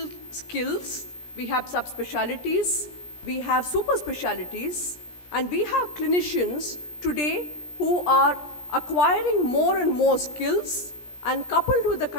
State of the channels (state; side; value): late; right; 17 ms